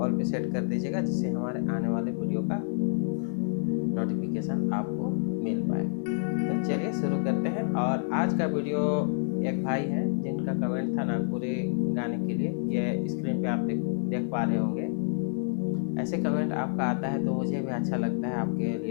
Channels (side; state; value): right; silent; digital silence